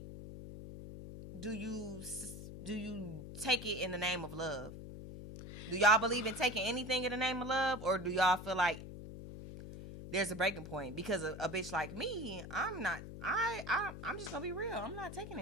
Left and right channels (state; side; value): noise; left; hum, 11 dB below the sound